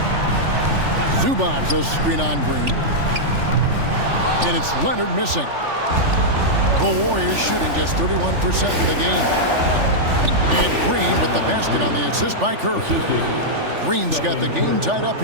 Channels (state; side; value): late; left; 3.4 ms